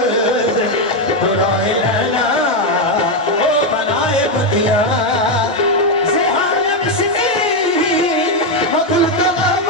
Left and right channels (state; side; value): normal; both; correlation 0.04